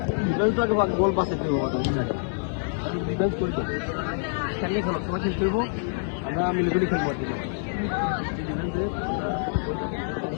আমরা মিলিগুলি খেলবো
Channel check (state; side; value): silent; right; digital silence